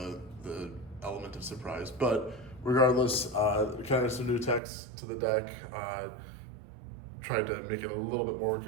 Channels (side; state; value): left; drops out; at 4.6 s